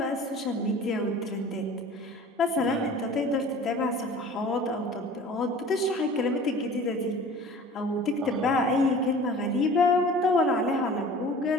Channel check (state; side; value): normal; both; correlation 0.44